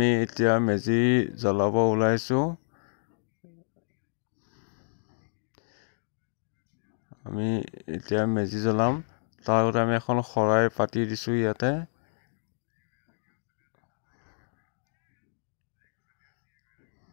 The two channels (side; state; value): right; silent; digital silence